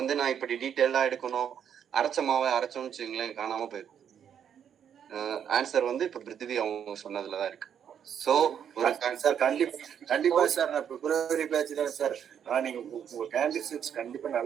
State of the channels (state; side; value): quieter; left; 8.6 dB